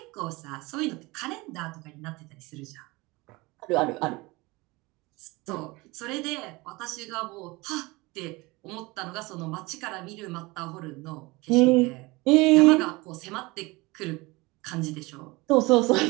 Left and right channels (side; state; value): left; quieter; 23.3 dB